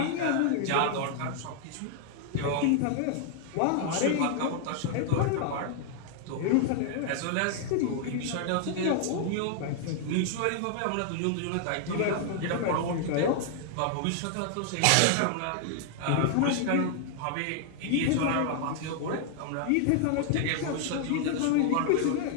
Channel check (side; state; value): both; different; correlation 0.00